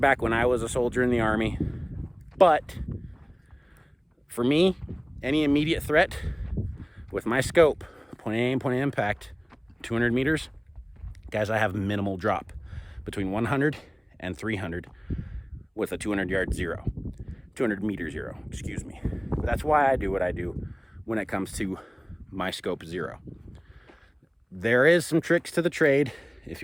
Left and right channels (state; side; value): identical; both; correlation 1.00